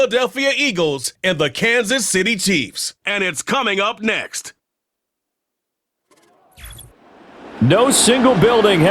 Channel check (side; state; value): both; identical; correlation 1.00